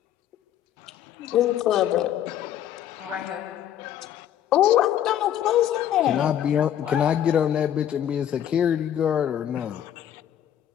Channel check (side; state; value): right; quieter; 10.6 dB